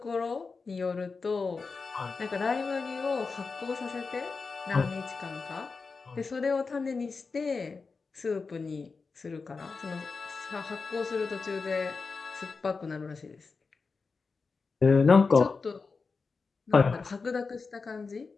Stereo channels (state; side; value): quieter; right; 4.5 dB